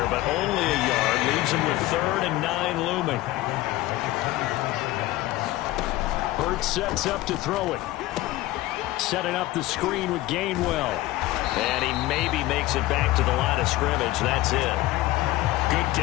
but only a yard. Leaves them with 3rd and 9 looming. Hurts sets up to throw it. Setting up the screen with Gainwell. And he maybe makes it back to the line of scrimmage. That's it. Good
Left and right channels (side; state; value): right; quieter; 17.2 dB